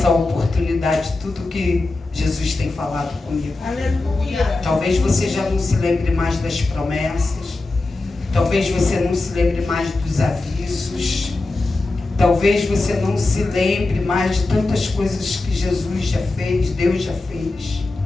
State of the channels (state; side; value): quieter; right; 3.2 dB